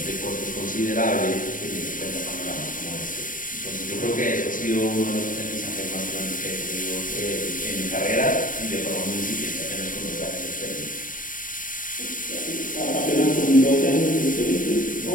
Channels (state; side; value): late; right; 0.39 ms